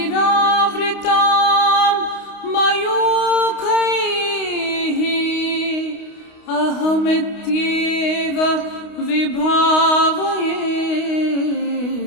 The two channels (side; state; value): right; late; 29 ms